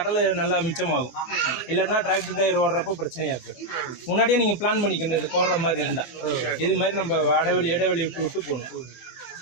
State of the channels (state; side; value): late; right; 23 ms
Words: நல்லா மிச்சமாகும். இல்லைன்னா டிராக்டர் டயர் ஓடுறப்போ பிரச்சனையா இருக்கு. முன்னாடியே நீங்க பிளான் பண்ணிக்கணும். இது போடுற மாதிரி இருந்தா இது மாதிரி நம்ம இடைவெளி விட்டு விட்டு போகணும்.